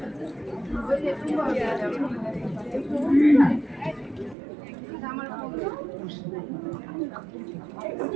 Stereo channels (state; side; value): drops out; left; at 4.4 s